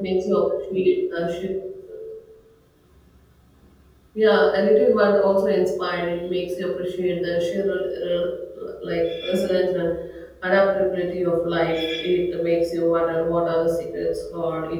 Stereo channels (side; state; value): both; identical; correlation 1.00